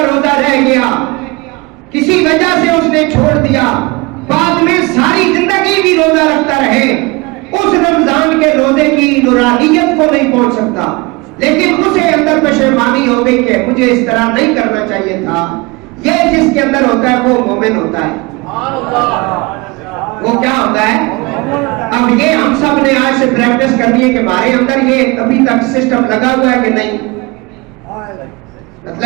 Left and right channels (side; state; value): left; quieter; 25.3 dB